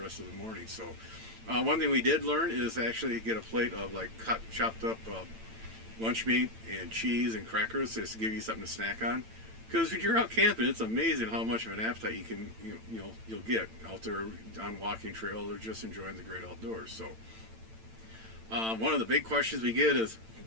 rest of the morning. So one thing we did learn is actually get a plate of chopped up lunch meat and cheese and crackers just to give you something to snack on. Because when you're out camping, it's amazing how much of an appetite you can you'll get out there on walking trails or just enjoying the great outdoors. So one of the big questions we get is,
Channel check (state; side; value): late; left; 8.9 ms